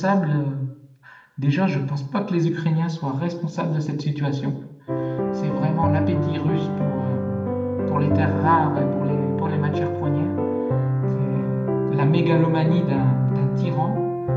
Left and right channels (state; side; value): identical; both; correlation 1.00